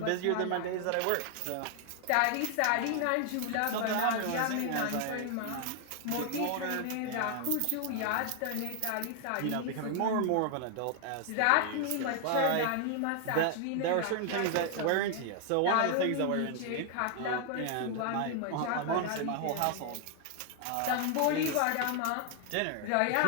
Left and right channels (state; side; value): different; both; correlation 0.00